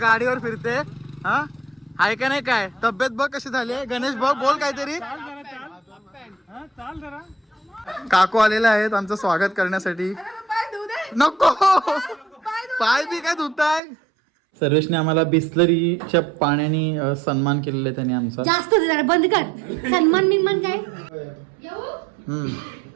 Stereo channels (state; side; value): drops out; left; at 13.8 s